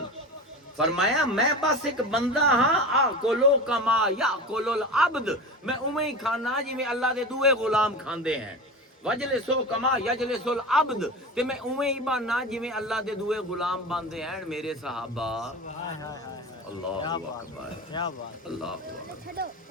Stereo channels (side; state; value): both; normal; correlation 0.29